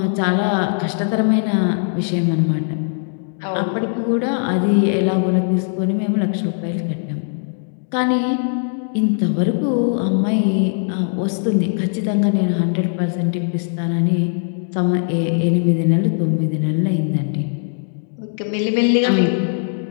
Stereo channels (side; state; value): right; silent; 63 dB below the other